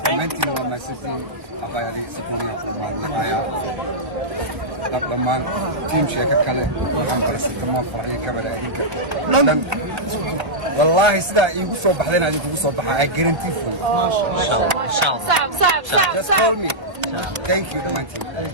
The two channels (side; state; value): left; late; 1.3 ms